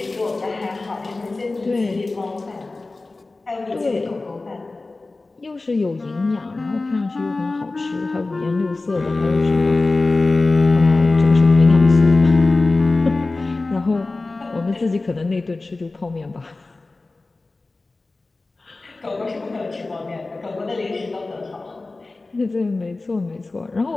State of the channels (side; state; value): right; quieter; 3.3 dB